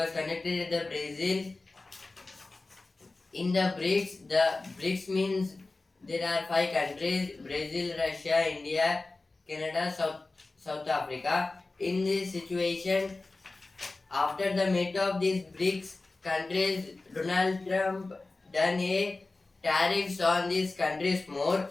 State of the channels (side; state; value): right; quieter; 3.3 dB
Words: conducted at the Brazil. In the BRICS means there are 5 countries: Brazil, Russia, India, Canada, South Africa. In this situation, after the meet of these BRICS countries, Donald Trump done a tariffs on these countries more,